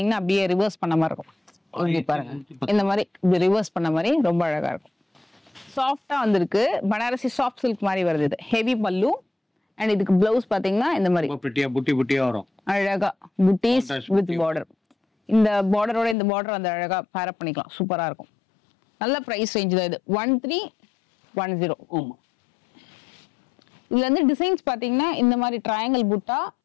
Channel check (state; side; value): drops out; right; at 16.2 s